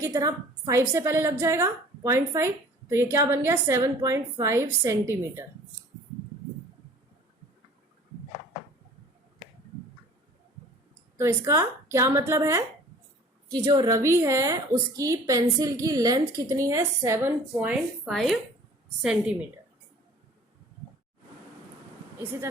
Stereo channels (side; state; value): both; normal; correlation 0.48